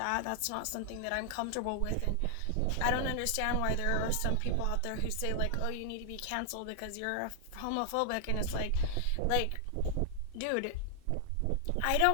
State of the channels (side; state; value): both; different; correlation 0.00